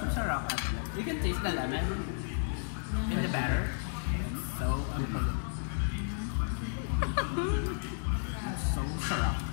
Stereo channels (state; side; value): silent; right; digital silence